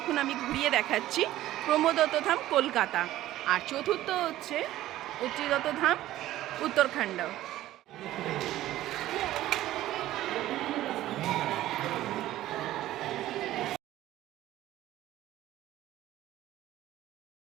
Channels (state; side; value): quieter; left; 14.6 dB